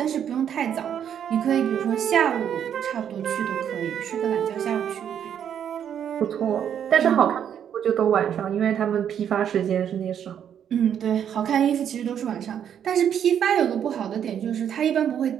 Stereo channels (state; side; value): quieter; left; 9.0 dB